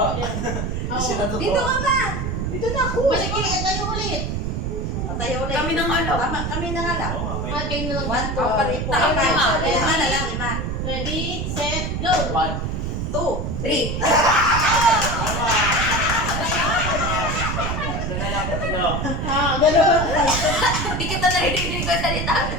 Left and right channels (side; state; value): right; noise; rumble, 2 dB below the sound